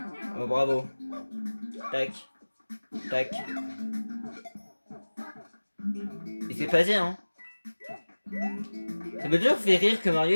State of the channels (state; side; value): inverted; both; correlation -1.00